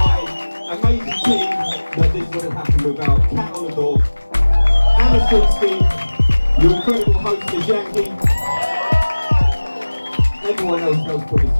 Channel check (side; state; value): both; inverted; correlation -1.00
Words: amazing team, that this wouldn't happen without Cat on the Door, Anna Silkstein, your incredible host, missyankey, everyone else helped put this